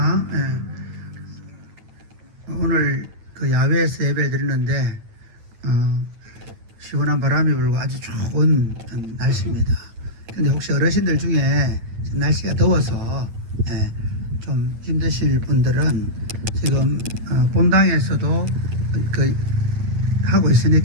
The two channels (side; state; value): left; late; 9.0 ms